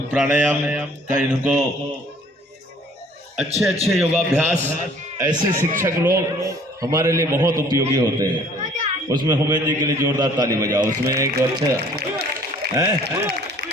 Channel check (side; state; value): both; normal; correlation 0.55